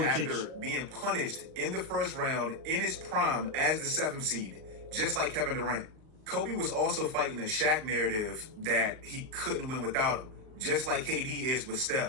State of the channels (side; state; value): left; late; 39 ms